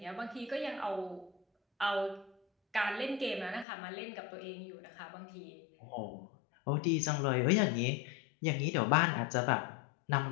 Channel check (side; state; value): right; drops out; at 3.7 s